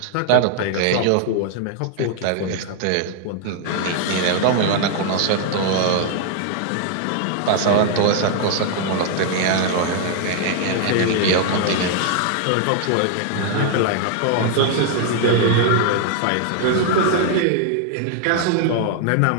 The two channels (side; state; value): both; different; correlation 0.00